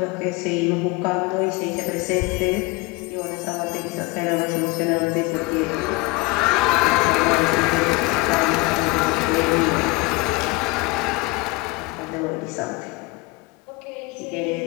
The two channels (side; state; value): right; quieter; 23.1 dB